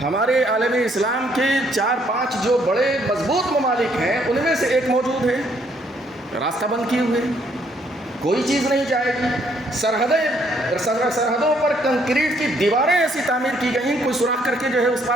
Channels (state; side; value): normal; both; correlation 0.68